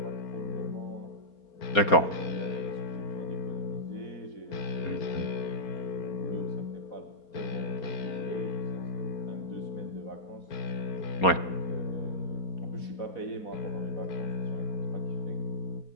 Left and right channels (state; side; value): late; right; 4.3 ms